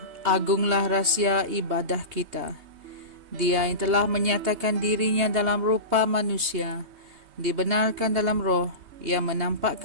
agunglah rahsia ibadah kita. Dia yang telah menyatakan dirinya dalam rupa manusia, dibenarkan dalam roh, yang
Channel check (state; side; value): late; left; 3.2 ms